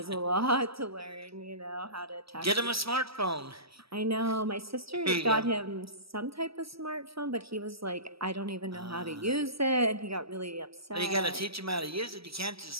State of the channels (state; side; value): late; left; 0.76 ms